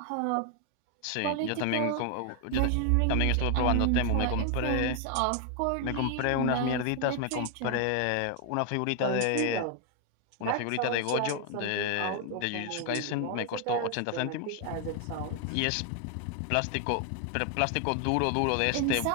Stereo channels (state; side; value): different; both; correlation 0.00